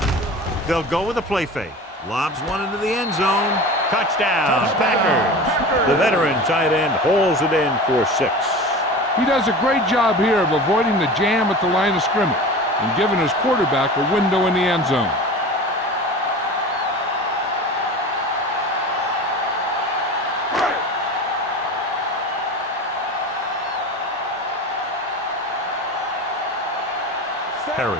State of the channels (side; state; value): both; normal; correlation 0.33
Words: They'll go with a play fake. Lobs one into the end zone. Touchdown, Packers. The veteran tight end hauls it in for 6. He does a great job here of avoiding the jam at the line of scrimmage and giving his quarterback a window in the end zone. Perry